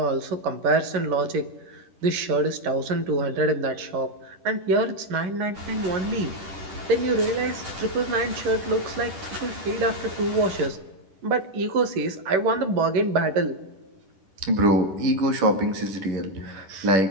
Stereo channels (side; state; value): left; late; 10 ms